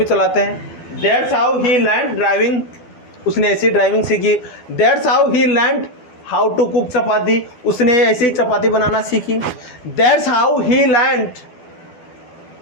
चलाते हैं। That's how he learned driving, उसने ऐसी ड्राइविंग सीखी। That's how he learned how to cook chapati, उसने ऐसे ही चपाती बनाना सीखी। That's how he learned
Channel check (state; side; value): late; right; 12 ms